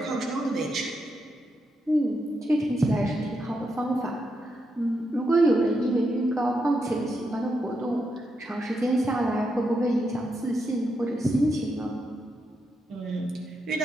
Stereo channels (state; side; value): normal; both; correlation 0.83